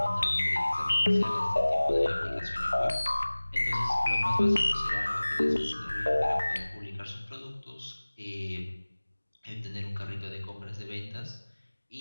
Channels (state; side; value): inverted; both; correlation -1.00